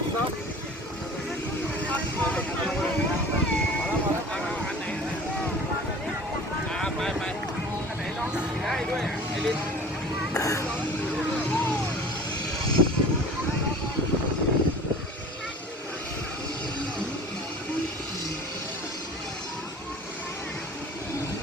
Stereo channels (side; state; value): both; normal; correlation 0.42